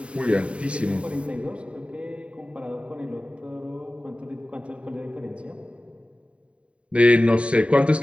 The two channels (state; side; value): late; left; 0.060 ms